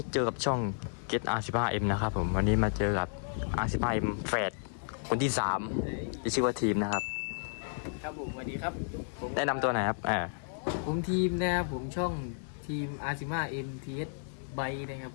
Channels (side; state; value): right; silent; digital silence